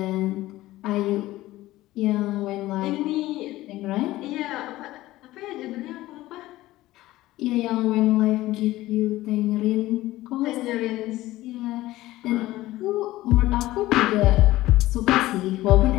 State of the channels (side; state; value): right; quieter; 16.7 dB